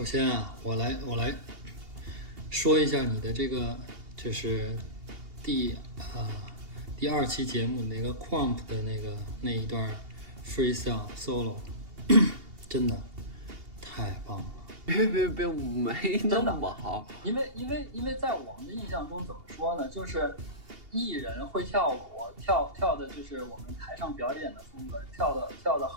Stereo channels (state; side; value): late; left; 2.8 ms